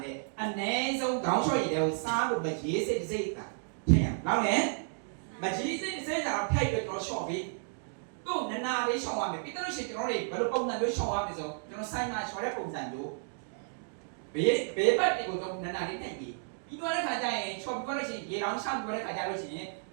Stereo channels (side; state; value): left; silent; digital silence